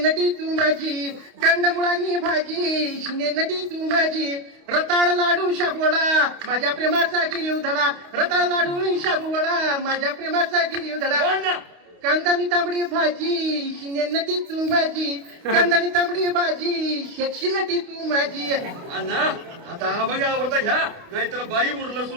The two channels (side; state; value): left; late; 28 ms